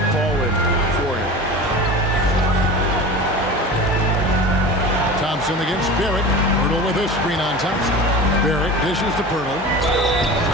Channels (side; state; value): both; normal; correlation 0.34